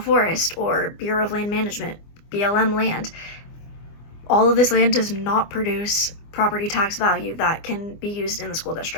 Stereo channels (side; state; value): right; late; 24 ms